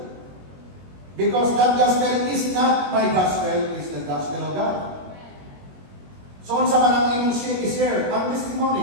Because that gospel is not my gospel, it's the gospel of God. So, unsa man ang imong share, ang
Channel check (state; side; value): late; left; 21 ms